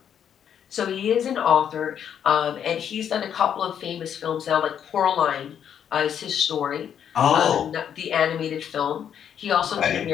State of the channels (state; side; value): quieter; right; 8.8 dB